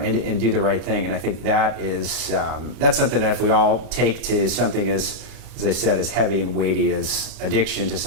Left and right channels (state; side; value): late; left; 32 ms